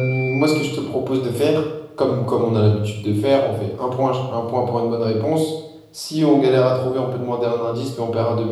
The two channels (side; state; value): both; identical; correlation 1.00